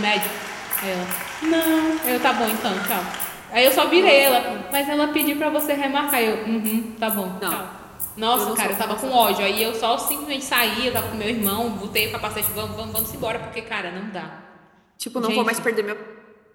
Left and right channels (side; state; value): both; identical; correlation 1.00